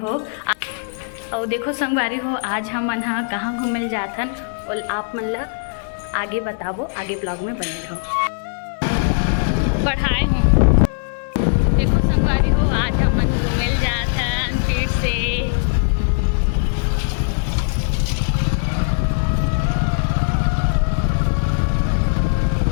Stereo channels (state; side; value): silent; right; digital silence